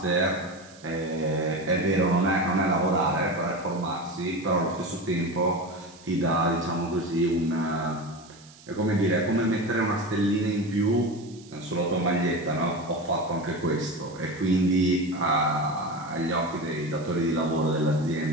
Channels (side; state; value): right; noise; hiss, 23 dB below the sound